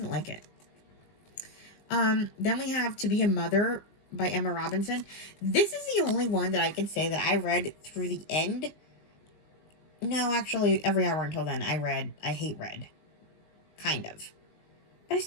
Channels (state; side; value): late; right; 19 ms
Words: like it. Then we have To Be a Mother by Emma Robinson. This is the only one that I can say that I read through the end. No, actually, every hour until then I hate read. Kind of. But I